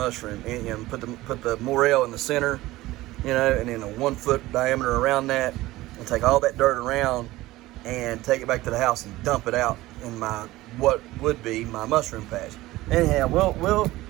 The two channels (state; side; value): quieter; left; 17.8 dB